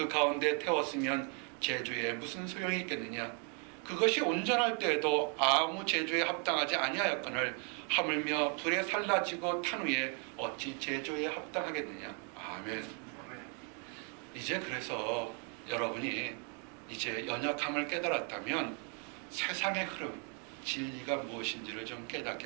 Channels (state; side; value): quieter; left; 36.9 dB